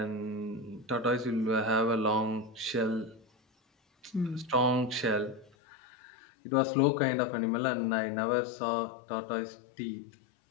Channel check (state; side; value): drops out; right; at 5.5 s